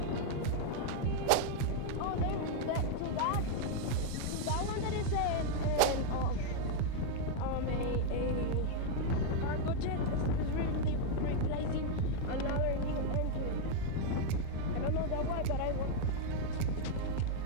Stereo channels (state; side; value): different; both; correlation 0.00